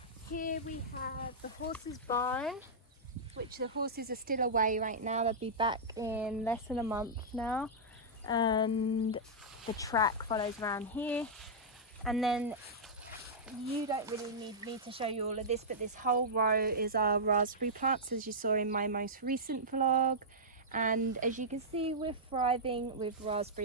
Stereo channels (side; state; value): both; normal; correlation -0.10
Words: Here we have the horse's barn, which the horses are still away right now. They'll be back in less than a month now. And the track follows around here. And then you don't really need me to show you all of this, but this whole row is our raspberry plants, as you saw in my most recent vlog. And as you can see, we're thriving with